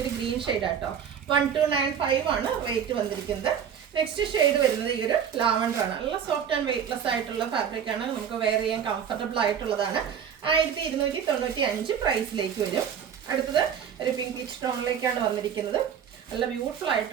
ഒരു ഗ്രീൻ ഷെയ്ഡ് ആട്ടോ. 1295 ആണ് റേറ്റ് വന്നിരിക്കുന്നത്. നെക്സ്റ്റ് ഷെയ്ഡ് വരുന്നത് ഈ ഒരു ലാവൻഡർ ആണ്. നല്ല സോഫ്റ്റ് ആൻഡ് വെയ്റ്റ്ലെസ് ആയിട്ടുള്ള ഫാബ്രിക് ആണ്. നമുക്ക് വെയർ ചെയ്യാൻ കംഫർട്ടബിൾ ആയിട്ടുള്ളതാണ്. 1295 പ്രൈസിലേക്ക് വരും. അടുത്തത് ഒരു പിങ്ക് പീച്ച് ടോണിലേക്കാണ് വന്നിരിക്കുന്നത്. നല്ല ബ്യൂട്ടിഫുൾ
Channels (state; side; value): quieter; left; 8.1 dB